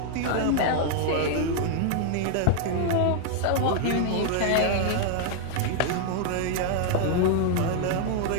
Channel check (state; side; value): different; both; correlation 0.00